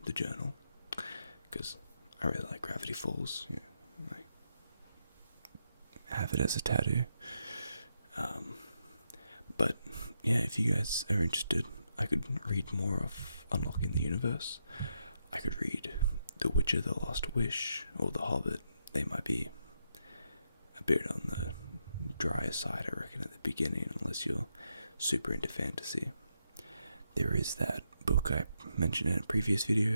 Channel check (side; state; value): both; inverted; correlation -0.81